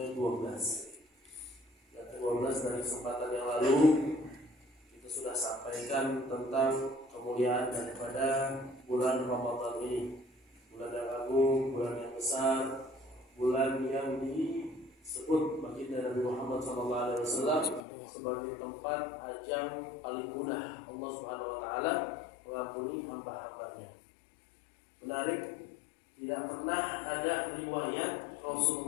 Yang ke-12 dari kesempatan yang lalu kita sudah sampaikan tentang kemuliaan daripada bulan Ramadan ini. Bulan yang agung, bulan yang besar, bulan yang disebut baginda Nabi Muhammad SAW sebagai tempat ajang paling mudah Allah Subhanahu wa taala mengampuni hamba-hambanya. Menarik, tidak pernah ada riwayat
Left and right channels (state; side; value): drops out; right; at 17.8 s